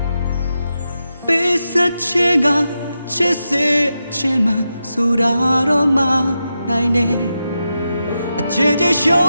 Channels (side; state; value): both; inverted; correlation -0.88